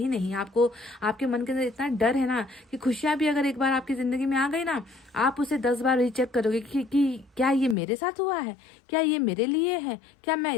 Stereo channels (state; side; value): drops out; right; at 7.8 s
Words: नहीं। आपको आपके मन के अंदर इतना डर है ना कि खुशियां भी अगर एक बार आपकी जिंदगी में आ गई ना, आप उसे 10 बार रीचेक करोगे कि क्या ये मेरे साथ हुआ है, क्या ये मेरे लिए है, क्या मैं